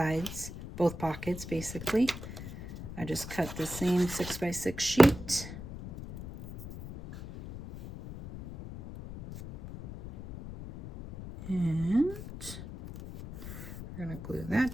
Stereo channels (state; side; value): noise; left; rumble, 11 dB below the sound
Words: both pockets basically. I just cut the same 6x6 sheet. And we're going to glue